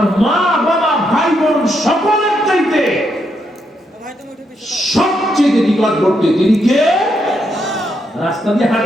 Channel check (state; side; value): normal; both; correlation 0.79